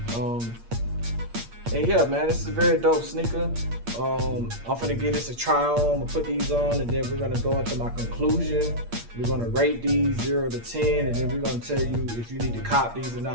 And yeah, man, this is a very dope sneaker. I'm gonna give this a try on. I'm gonna put these on, and then we're gonna go into my conclusion. We're gonna rate these 0 to 10, and then we're gonna tell you if you need to cop these or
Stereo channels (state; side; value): late; left; 8.6 ms